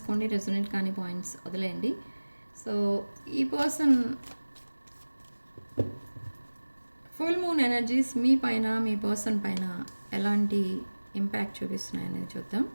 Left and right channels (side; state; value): both; inverted; correlation -1.00